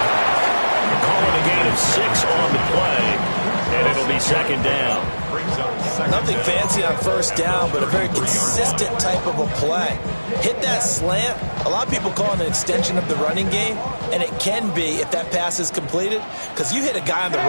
Calling a gain of 6 on the play, and it'll be 2nd down. Nothing fancy on 1st down, but a very consistent type of a play. Hit that slant. A lot of people call it an extension of the running game, and it can be if that pass is completed, because you hit a guy on the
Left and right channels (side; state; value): both; inverted; correlation -1.00